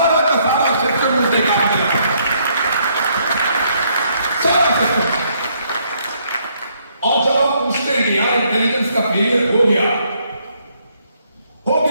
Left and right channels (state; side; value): inverted; both; correlation -0.70